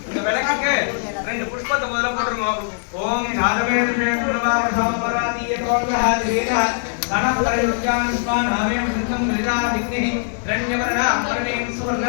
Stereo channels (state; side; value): silent; right; digital silence